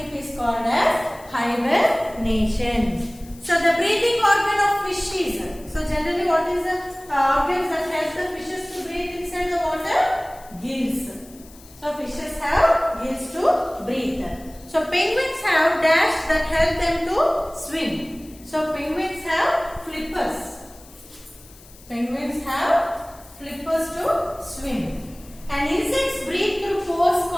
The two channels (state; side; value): noise; left; hiss, 23 dB below the sound